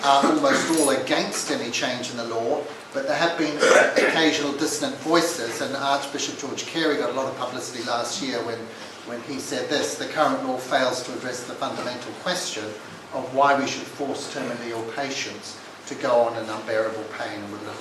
are almost all against any change in the law, but there have been occasional dissonant voices, and Archbishop George Carey got a lot of publicity last year when he said this: the current law fails to address the fundamental question of why we should force terminally ill patients to go on in unbearable pain and with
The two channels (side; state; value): both; identical; correlation 1.00